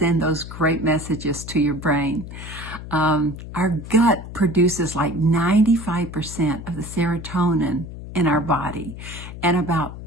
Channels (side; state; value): left; noise; hum, 11 dB below the sound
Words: those great messages to your brain. Our gut produces like 95% of the serotonin in our body and about